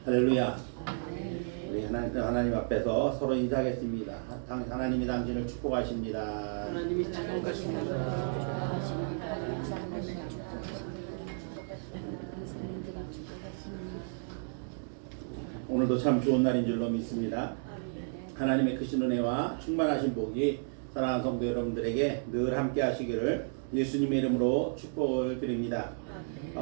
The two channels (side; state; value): left; silent; digital silence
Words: 할렐루야. 우리 하나님 앞에서 서로 인사하겠습니다. 하나님이 당신을 축복하십니다. 하나님이 축복하십니다. 오늘도 참 좋은 날인 줄로 믿습니다. 하나님의 크신 은혜와 충만하신 복이 사랑하는 성도 여러분들에게 늘 함께 하시기를 예수님의 이름으로 축복을 드립니다.